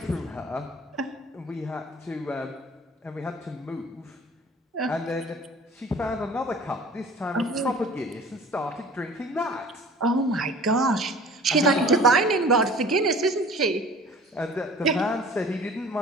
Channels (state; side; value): normal; both; correlation 0.46